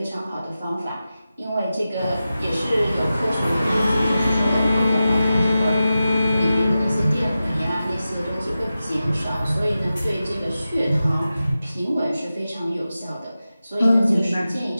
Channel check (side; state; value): both; inverted; correlation -0.93